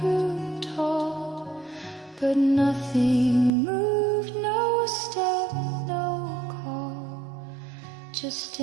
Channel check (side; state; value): left; drops out; at 3.5 s